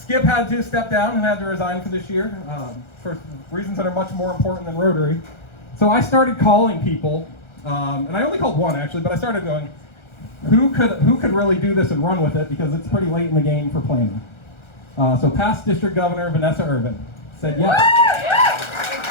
had to step down and had to resign for this year for reasons that are much more important than Rotary. So I started calling people, and I only called one actually, but I started going, who could really do this and run with it because it's pretty late in the game for planning. So past District Governor Vanessa Irvin said yes.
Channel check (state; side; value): late; right; 1.3 ms